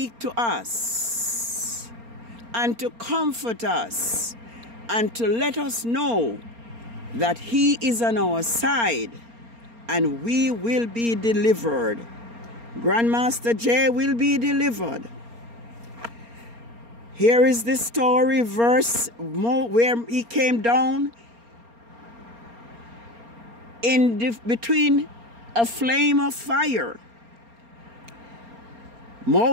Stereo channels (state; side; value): late; left; 4.3 ms